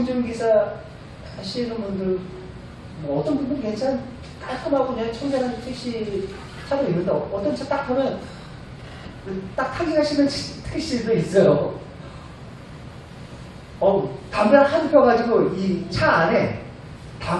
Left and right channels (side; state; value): both; identical; correlation 1.00